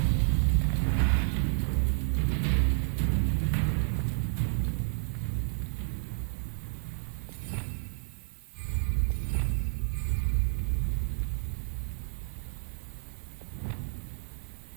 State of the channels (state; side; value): silent; left; 57 dB below the other